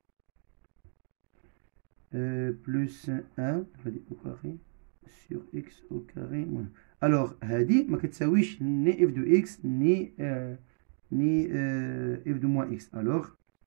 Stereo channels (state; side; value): silent; left; digital silence